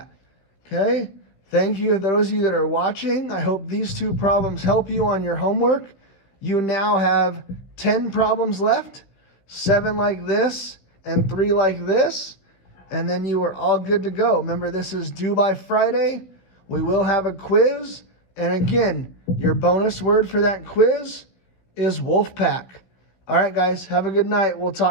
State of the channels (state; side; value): late; right; 16 ms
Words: Okay? Thank you to those of you that are watching. I hope these 2 problems help you on your homework. You now have 10 problems left, 7 like this and 3 like this, and then you are all good to go. Remember, this is due by Friday. We will have a quiz, and again, your bonus word for that quiz is Wolfpack. All right, guys, have a good night. We'll